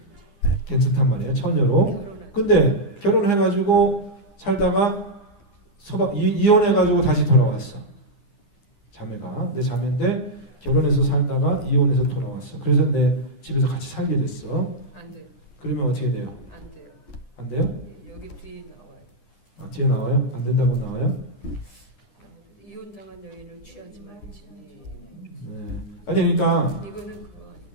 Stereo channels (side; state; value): right; late; 10 ms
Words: 괜찮단 말이에요. 처녀로. 결혼한. 근데 결혼해가지고 살다가 이혼해가지고 다시 돌아왔어. 자매가 내 자매인데 결혼해서 살다가 이혼해서 돌아왔어. 그래서 내 집에서 같이 살게 됐어. 안 돼요. 그러면 어떻게 돼요? 안 돼요. 안 돼요? 여기 뒤에 나와요. 아, 뒤에 나와요? 안 된다고 나와요? 이혼당한 여인을 취하지 말지. 네. 아니 그러니까 이거는 그거 아니에요.